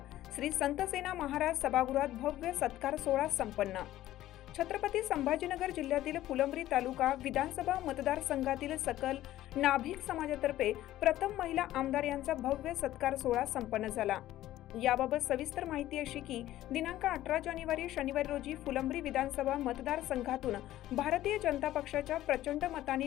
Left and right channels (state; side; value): quieter; right; 14.3 dB